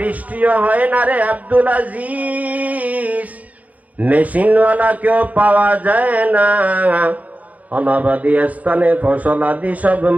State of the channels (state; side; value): late; left; 0.073 ms